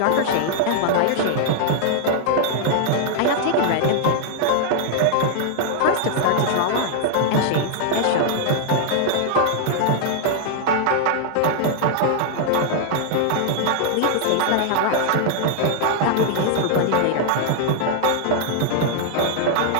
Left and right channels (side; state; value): both; different; correlation -0.01